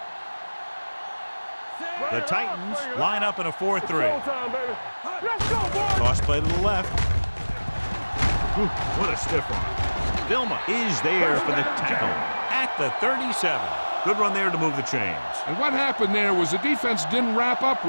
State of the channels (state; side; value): inverted; both; correlation -1.00